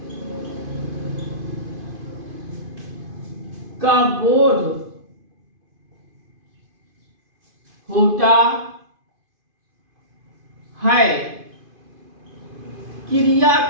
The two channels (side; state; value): left; late; 2.5 ms